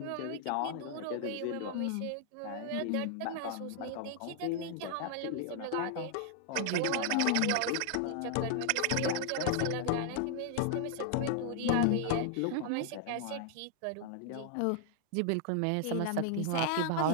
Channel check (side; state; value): both; different; correlation -0.01